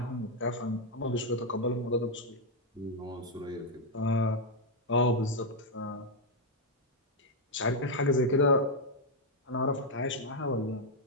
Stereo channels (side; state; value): both; normal; correlation -0.01